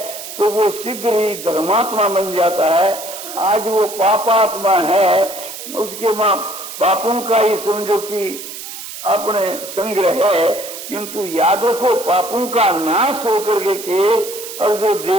तो वो शीघ्र ही धर्मात्मा बन जाता है। आज वो पापात्मा है, उसके माँ पापों का ही समझो कि अपने संग्रह है, किंतु यादों को पापों का नाश होकर के और जो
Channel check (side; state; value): right; noise; hiss, 10 dB below the sound